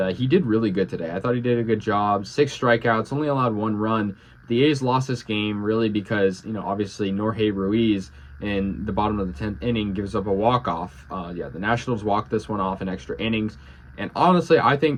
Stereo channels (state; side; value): identical; both; correlation 1.00